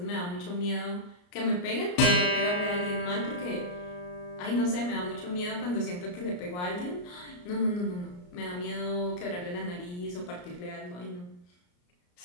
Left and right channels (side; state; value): right; late; 34 ms